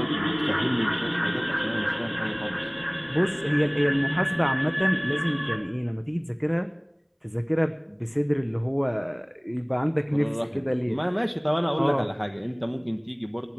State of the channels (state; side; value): identical; both; correlation 1.00